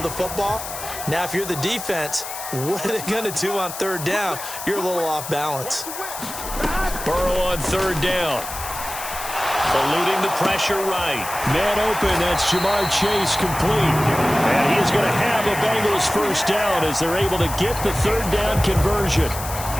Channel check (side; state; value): left; noise; hiss, 9 dB below the sound